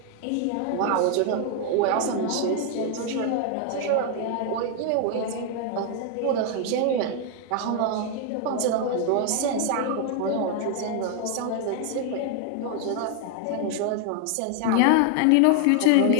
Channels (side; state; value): both; different; correlation 0.00